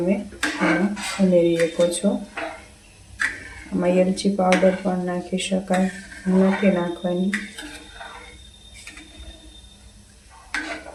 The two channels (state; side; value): identical; both; correlation 1.00